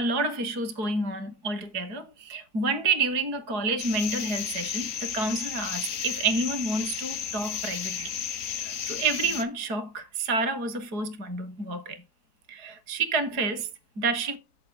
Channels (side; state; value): left; late; 4.7 ms